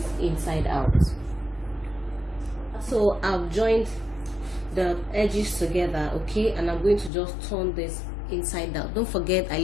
inside out. So I've joined the edges together, okay, and I'm going to just turn this inside out. Don't forget I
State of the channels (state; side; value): drops out; right; at 7.1 s